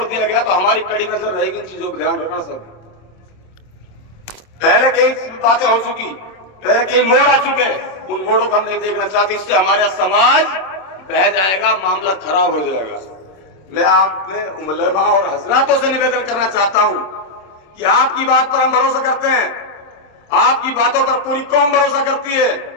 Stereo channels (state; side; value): late; right; 26 ms